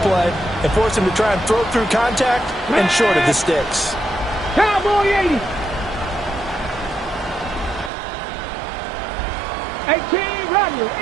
play and forced him to try and throw through contact and short of the sticks. Cowboy 80. 18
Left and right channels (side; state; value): left; drops out; at 7.9 s